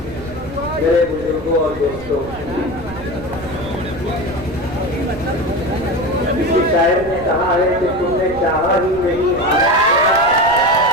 मेरे बुजुर्गों और दोस्तों, किसी शायर ने कहा है कि तुमने चाहा ही नहीं,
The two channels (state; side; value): noise; right; rumble, 15 dB below the sound